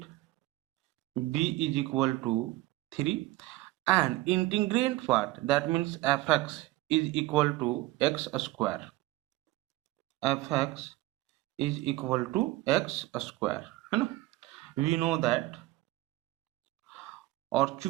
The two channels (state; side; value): quieter; left; 18.3 dB